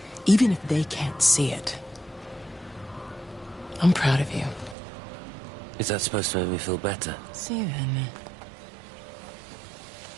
Even if they can't see it, I'm proud of you. Is that supposed to make me feel better? Steven.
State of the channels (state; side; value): drops out; left; at 4.8 s